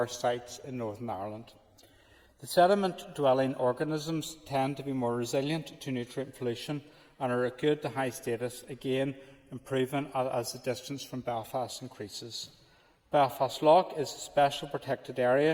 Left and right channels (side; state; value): both; identical; correlation 1.00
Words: sites in Northern Ireland. The sediment-dwelling organisms tend to be more resilient to nutrient pollution and are at good to high status, again improving as the distance from Belfast increases. Belfast Lough is a special protected